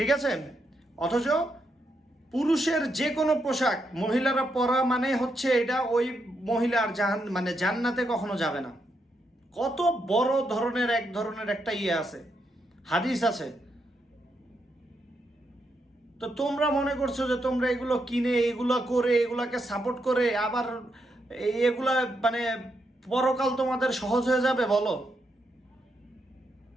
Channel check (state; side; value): normal; both; correlation 0.81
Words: আছে। অথচ পুরুষের যে কোনো পোশাক মহিলারা পরা মানে হচ্ছে এটা ওই মহিলার জান্নাতে কখনো যাবে না। কত বড় ধরনের এক ধরনের একটা ইয়ে আছে, হাদিস আছে। তো তোমরা মনে করছো যে তোমরা এগুলো কিনে, এগুলো করে, এগুলাকে সাপোর্ট করে আবার এগুলা পরকাল তোমাদের সহজ হয়ে যাবে বলো?